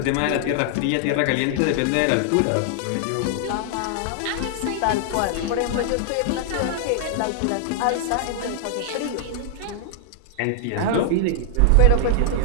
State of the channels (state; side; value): different; both; correlation 0.00